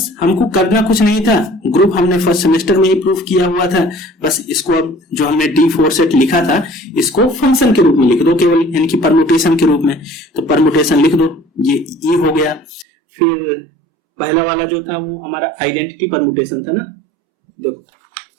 हमको करना कुछ नहीं था, ग्रुप हमने फर्स्ट सेमेस्टर में ही प्रूफ किया हुआ था। बस इसको अब जो हमने D4 सेट लिखा था इसको फंक्शन के रूप में लिख दो केवल, यानी कि परमुटेशन के रूप में। तो परमुटेशन लिख दो, ये E हो गया। फिर पहला वाला जो था वो हमारा आइडेंटिटी परमुटेशन था ना। देखो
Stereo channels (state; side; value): drops out; left; at 12.9 s